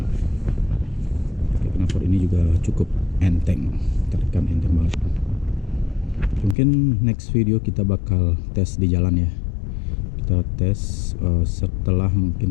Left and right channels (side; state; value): right; drops out; at 6.6 s